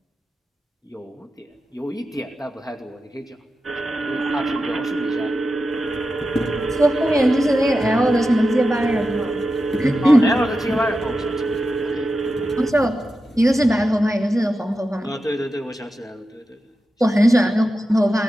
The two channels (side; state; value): both; normal; correlation 0.91